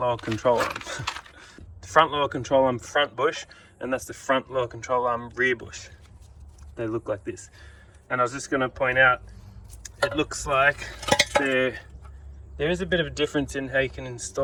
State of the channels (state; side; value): identical; both; correlation 1.00